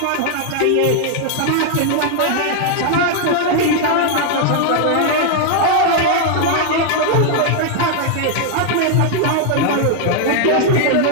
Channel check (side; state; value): both; different; correlation 0.00